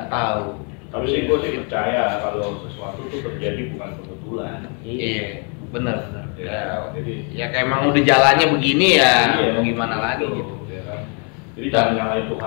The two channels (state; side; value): quieter; right; 37.3 dB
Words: tahu. Tapi sih gue sih percaya kalau sesuatu itu terjadi bukan kebetulan. Iya, benar. Ya, jadi ya kayak emang udah jalannya begini ya, mau gimana lagi gitu. Ya kan? Jadi jangan nyalain